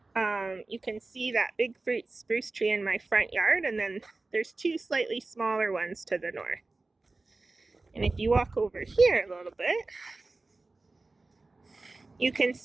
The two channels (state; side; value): quieter; left; 3.4 dB